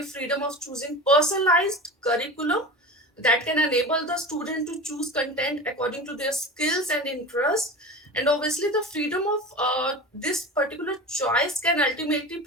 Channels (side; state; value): both; normal; correlation 0.30